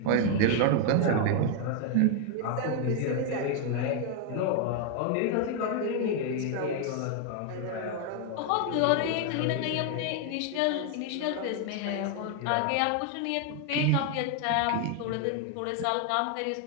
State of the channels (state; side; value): different; both; correlation 0.01